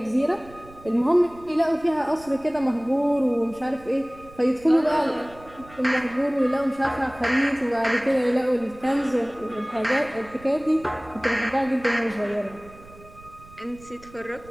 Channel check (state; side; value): noise; right; rumble, 22 dB below the sound